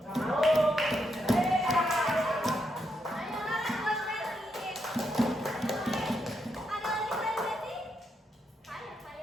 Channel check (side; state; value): both; normal; correlation 0.80